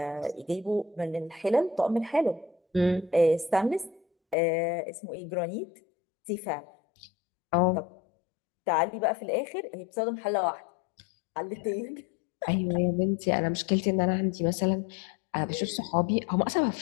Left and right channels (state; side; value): drops out; right; at 4.4 s